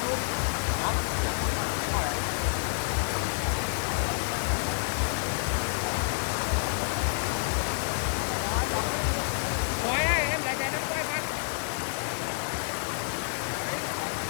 Quay đây, em lại chạy nó quay quay.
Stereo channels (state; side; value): silent; right; digital silence